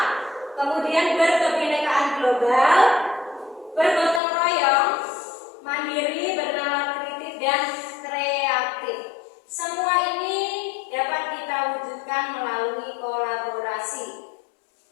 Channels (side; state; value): right; drops out; at 4.2 s